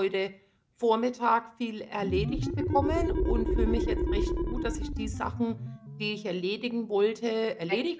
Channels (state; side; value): identical; both; correlation 1.00